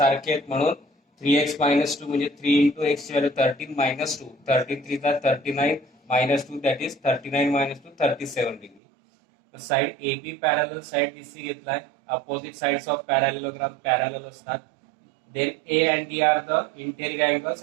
आहेत म्हणून 3x मायनस 2 म्हणजे 3 into x value 13 minus 2 13 3 39 minus 2 that is 39 minus 2 37 degree. Side A B parallel side BC घेतलाय. Opposite sides of parallelogram parallel असतात. Then A and D are the interior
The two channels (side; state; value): left; drops out; at 8.8 s